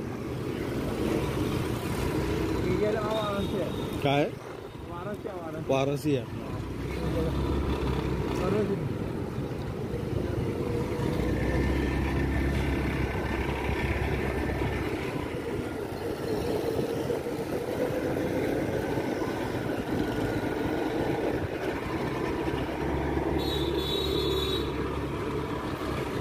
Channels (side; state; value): both; identical; correlation 1.00